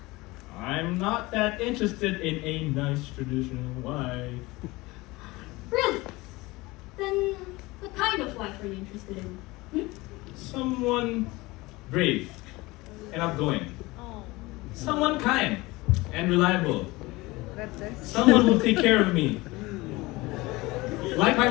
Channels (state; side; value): quieter; right; 21.6 dB